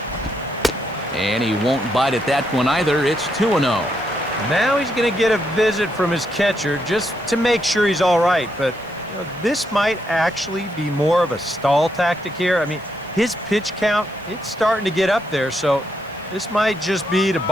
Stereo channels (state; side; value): noise; right; hiss, 28 dB below the sound